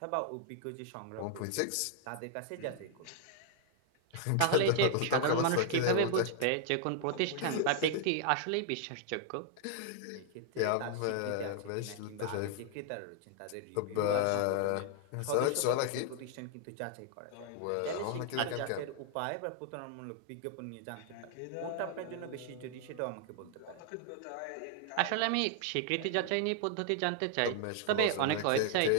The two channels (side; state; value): both; different; correlation 0.00